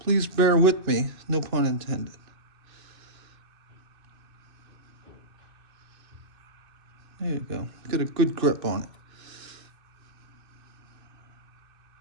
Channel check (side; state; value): left; late; 2.6 ms